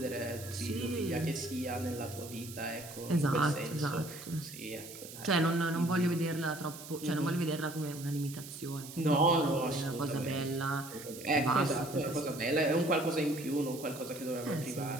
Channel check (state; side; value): noise; right; hiss, 13 dB below the sound